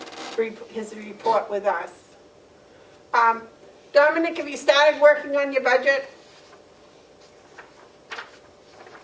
his report with us. Dominic, have you started working on your budget?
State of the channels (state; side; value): identical; both; correlation 1.00